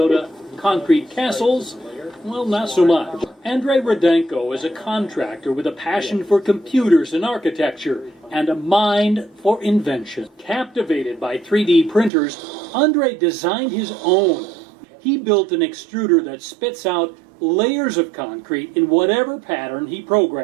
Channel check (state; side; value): drops out; left; at 12.1 s